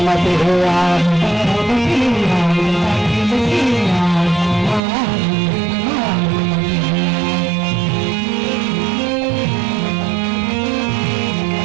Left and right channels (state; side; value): drops out; left; at 4.8 s